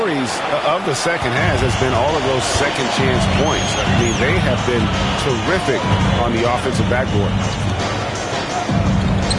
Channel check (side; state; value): both; identical; correlation 1.00